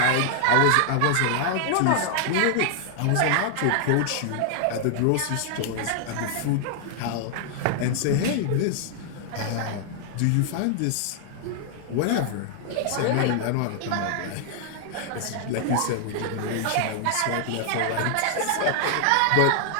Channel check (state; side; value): different; both; correlation 0.00